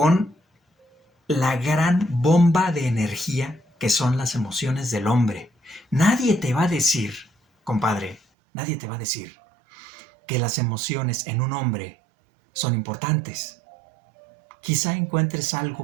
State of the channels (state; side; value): drops out; left; at 8.2 s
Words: la gran bomba de energía que son las emociones del hombre. Nadie te va a decir, compadre, nadie te va a decir que las emociones en un hombre son importantes. Quizá encuentres